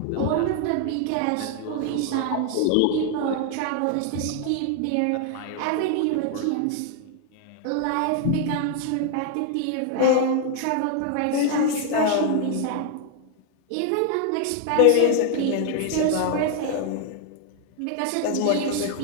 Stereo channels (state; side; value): different; both; correlation 0.00